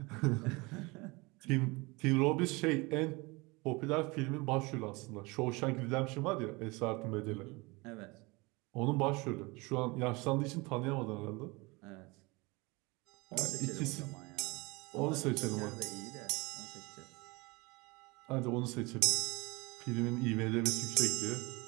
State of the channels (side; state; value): left; quieter; 25.3 dB